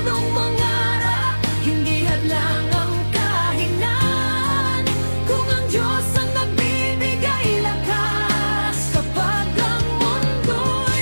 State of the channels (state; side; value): inverted; both; correlation -1.00